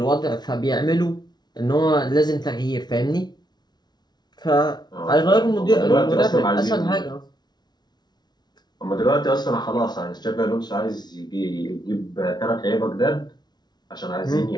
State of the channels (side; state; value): right; late; 0.20 ms